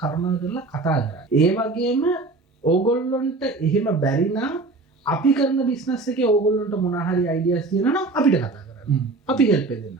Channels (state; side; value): quieter; left; 3.4 dB